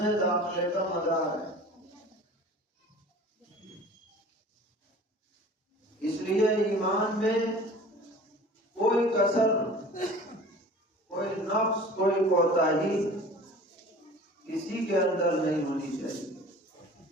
میں داخلے کا مدار ہے۔ اس لیے ایمان میں کوئی کسر، کوئی نقص، کوئی کوتاہی کسی کے اندر نہیں ہونی چاہیے۔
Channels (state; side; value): normal; both; correlation 0.43